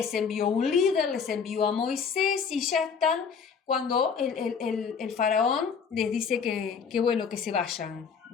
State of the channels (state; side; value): quieter; right; 6.2 dB